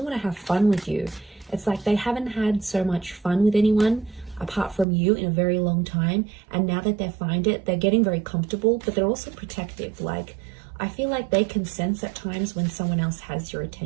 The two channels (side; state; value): left; drops out; at 4.9 s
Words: want to have fun with you. It's like they haven't had so much fun with anyone apart from you in a very long time, and now that they find it, they're getting very comfortable, but they're also protective. Like, I feel like they can sense at times when someone else has your